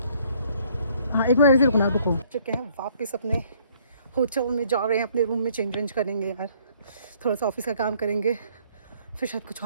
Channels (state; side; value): inverted; both; correlation -0.62